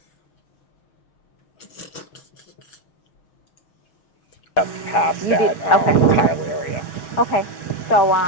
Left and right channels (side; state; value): right; late; 5.8 ms